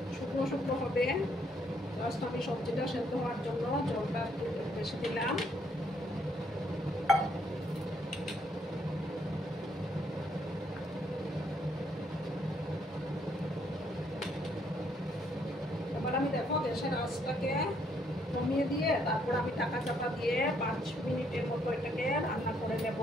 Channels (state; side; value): normal; both; correlation 0.70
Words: শুকনো শুকনো হবে। জাস্ট আমি সবজিটা সেদ্ধ হওয়ার জন্য জলটা একটু বেশি দিলাম। এবার আমি দেখো গ্যাসের আঁচটাকে কমিয়ে দিয়ে তারপর আমি ঢাকা চাপা দিয়ে 5 মিনিটের মতো এটাকে রান্না করে নেব।